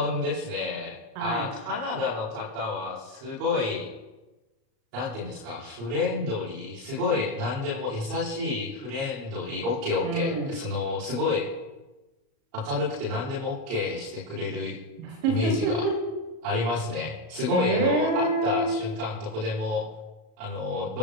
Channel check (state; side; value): late; left; 37 ms